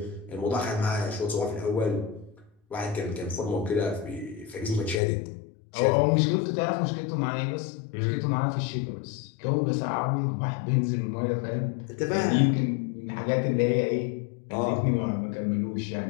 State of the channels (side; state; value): right; drops out; at 5.0 s